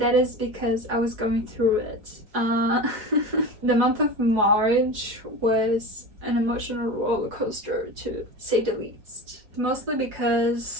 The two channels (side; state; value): left; late; 4.7 ms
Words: is because I was going through it. The month of March was an emotional roller coaster, to say the least. Mostly